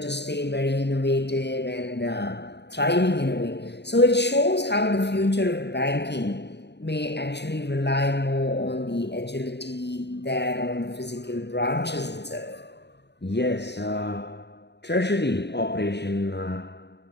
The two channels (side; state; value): right; late; 0.50 ms